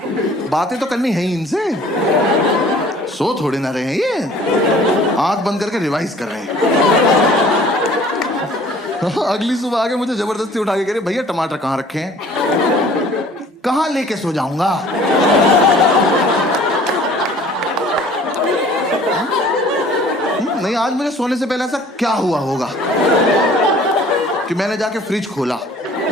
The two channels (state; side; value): normal; both; correlation 0.51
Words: बातें तो करनी है ही इनसे। सो थोड़े ना रहे हैं ये, आंख बंद करके रिवाइज कर रहे हैं। अगली सुबह आके मुझे जबरदस्ती उठा के कह रहे भैया टमाटर कहाँ रखे हैं? कहाँ लेके सो जाऊंगा? नहीं आज मुझे सोने से पहले ऐसा क्या हुआ होगा कि मैंने जाके फ्रिज खोला,